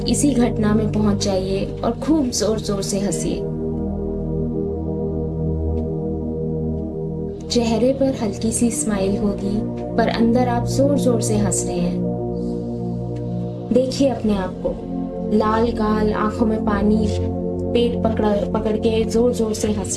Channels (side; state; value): both; identical; correlation 1.00